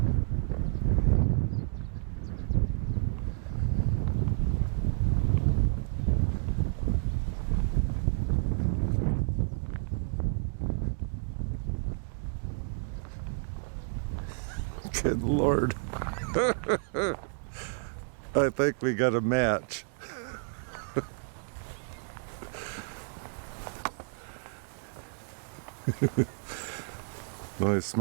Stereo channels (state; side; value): silent; left; digital silence